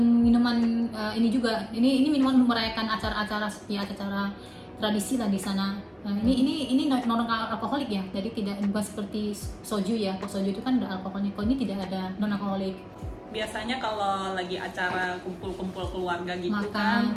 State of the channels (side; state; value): both; identical; correlation 1.00